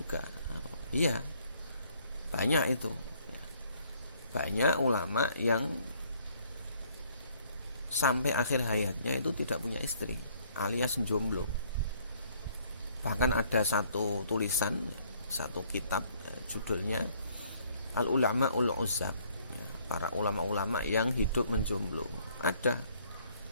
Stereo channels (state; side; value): inverted; both; correlation -0.63